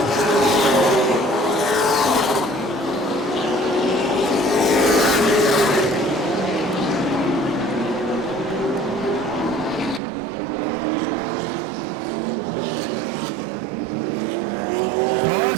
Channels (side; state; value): left; drops out; at 10.0 s